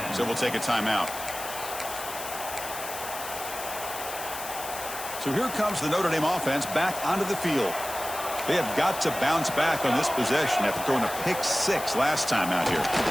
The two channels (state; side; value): noise; left; hiss, 9 dB below the sound